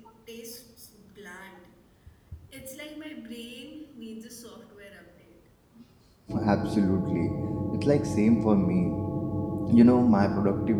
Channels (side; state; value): both; identical; correlation 1.00